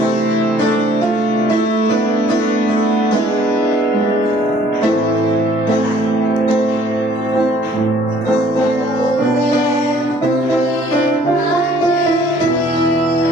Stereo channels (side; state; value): both; normal; correlation 0.58